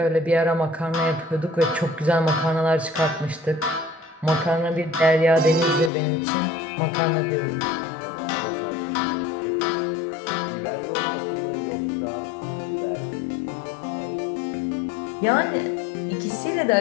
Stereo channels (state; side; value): drops out; right; at 5.9 s